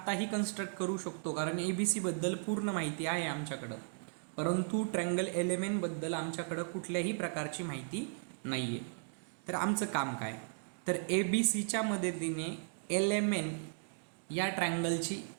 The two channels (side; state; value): left; silent; digital silence